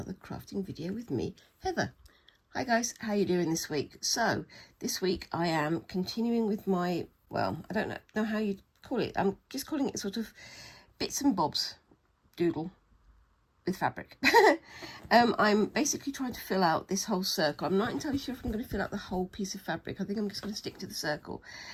crafting video with me, Heather. Hi guys, how you doing this week? So this week I am continuing with my, well, I don't know how you call it. I'm just calling it sort of bits and bobs doodle with fabric. I'm basically trying to fill out this whole circle. I'm not entirely sure if I'm going to fill out the whole piece of fabric. I think I'm just going to stick to the circle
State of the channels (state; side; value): identical; both; correlation 1.00